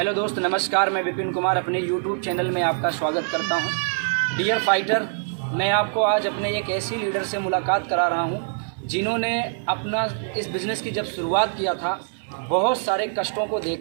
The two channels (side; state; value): left; silent; digital silence